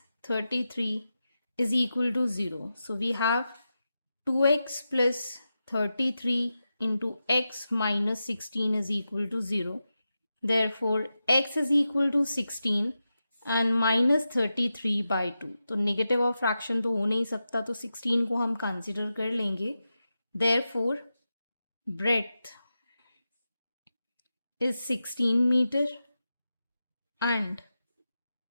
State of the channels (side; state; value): both; inverted; correlation -0.91